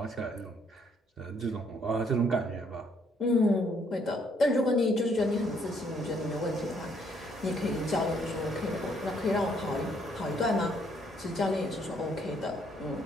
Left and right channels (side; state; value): both; normal; correlation 0.68